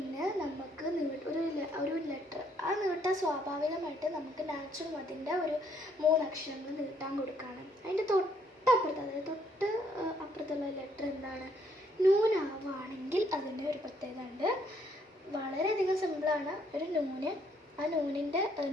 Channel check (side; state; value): both; normal; correlation 0.68